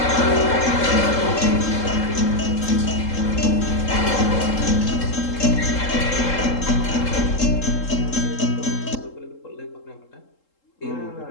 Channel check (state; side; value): late; right; 3.7 ms